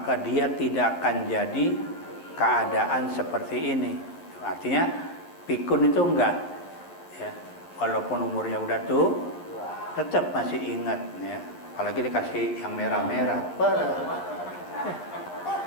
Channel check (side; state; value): right; late; 12 ms